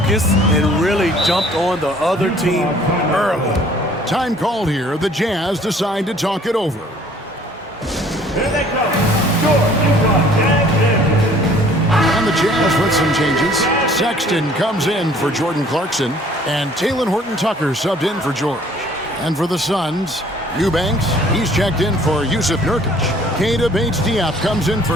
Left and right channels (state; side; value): normal; both; correlation 0.56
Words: and really jumped on the other team early. Time called here. The Jazz decide to talk it over. Here they come. George, And the Jazz with some changes. Sexton comes in for Jordan Clarkson, and Talen Horton-Tucker subbed in for George. And for the Suns, Eubanks, he's checked in for Yusuf Nurkic. Keita Bates-Diop comes in